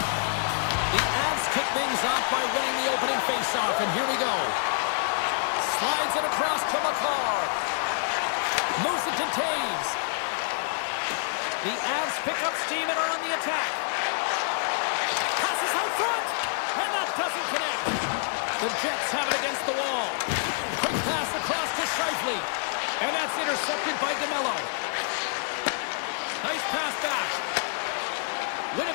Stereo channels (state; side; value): silent; right; digital silence